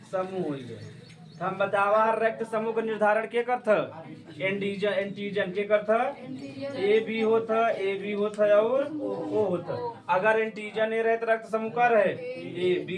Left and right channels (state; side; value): identical; both; correlation 1.00